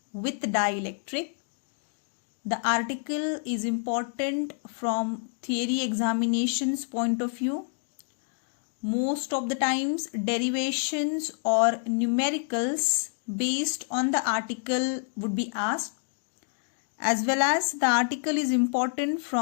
with Dielectric. The article is important from theory examinations point of view. Most of the times derivations or numericals based on the article would be asked, as well as the article is important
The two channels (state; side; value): silent; right; 59 dB below the other